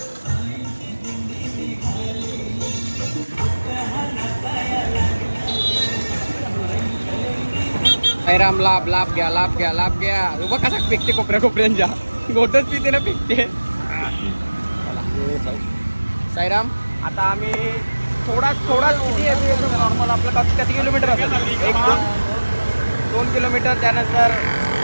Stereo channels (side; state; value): both; inverted; correlation -1.00